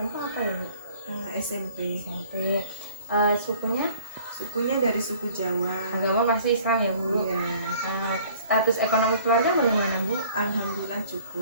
apa ya Bu? SMP. Sukunya? Sukunya dari suku Jawa. Agama pasti Islam ya Bu? Iya. Status ekonomi keluarga bagaimana Bu? Alhamdulillah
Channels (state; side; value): inverted; both; correlation -0.52